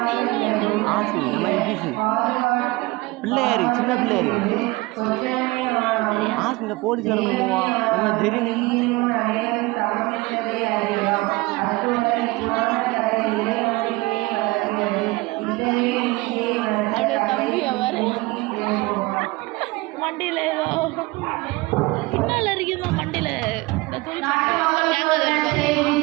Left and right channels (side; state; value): left; quieter; 22.4 dB